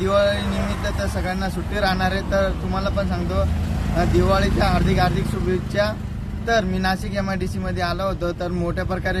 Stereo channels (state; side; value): identical; both; correlation 1.00